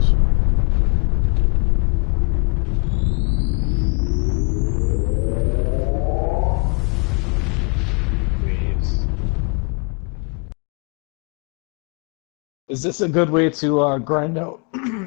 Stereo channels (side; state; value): right; quieter; 37.0 dB